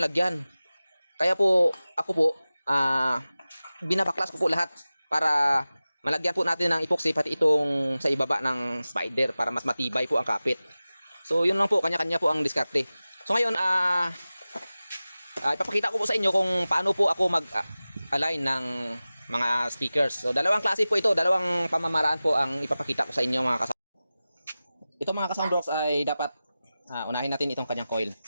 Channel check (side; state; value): both; inverted; correlation -0.96